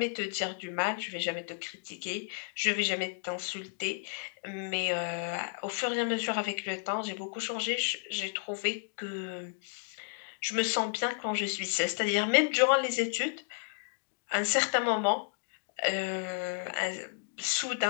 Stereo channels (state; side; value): silent; right; digital silence